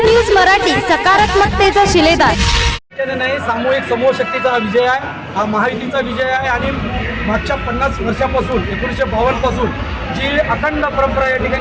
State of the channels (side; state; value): both; identical; correlation 1.00